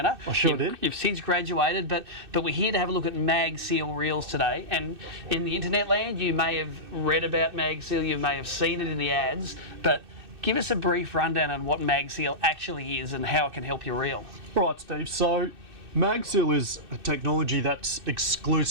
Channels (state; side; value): late; left; 2.6 ms